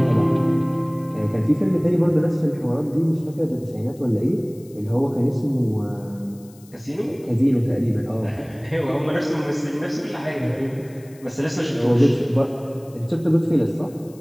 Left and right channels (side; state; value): left; noise; hiss, 26 dB below the sound